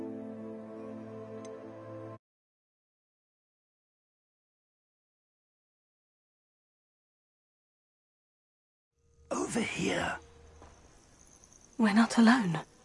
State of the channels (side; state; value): both; identical; correlation 1.00